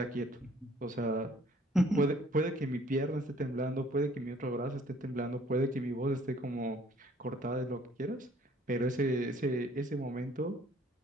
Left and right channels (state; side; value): normal; both; correlation 0.58